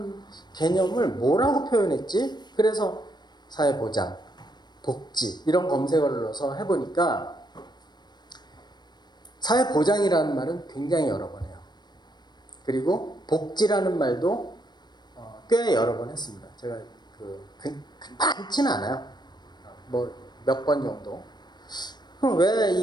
개념을 뭐라고 표현했지? 그래서 사회보장, 복지 이런 검색어를 넣어서 해보니까 사회보장이라는 말은 굉장히 여러 번 해요. 그리고 복지라는 말도 꽤 여러 번 했습니다. 제가 많지는 않아요. 뭐 몇 번 정도. 그럼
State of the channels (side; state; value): right; late; 0.21 ms